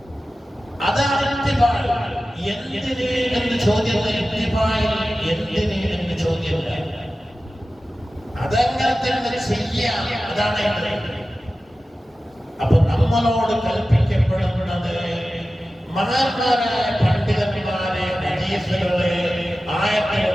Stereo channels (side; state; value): both; normal; correlation 0.95